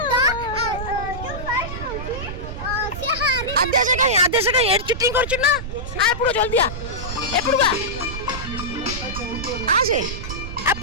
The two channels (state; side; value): noise; right; rumble, 8 dB below the sound